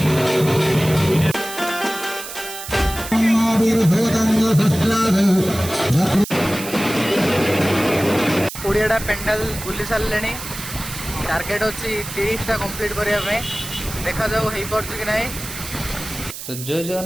कोड़ियाटा पेंडाल बुली सारे टार्गेट अच्छी 30टा कंप्लीट करने देखा जाऊ हो पार्छ कि नहीं। तो जय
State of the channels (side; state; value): right; noise; hiss, 10 dB below the sound